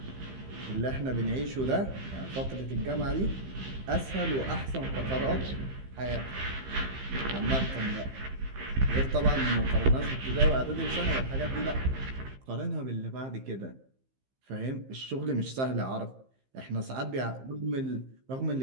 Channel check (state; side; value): late; left; 15 ms